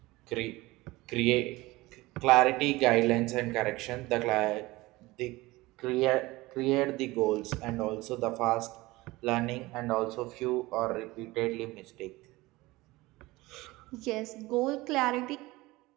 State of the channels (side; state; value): left; quieter; 20.3 dB